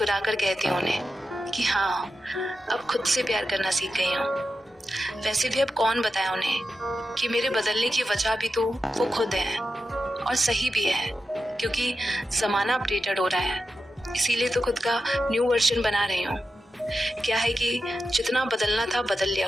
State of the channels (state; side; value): normal; both; correlation 0.90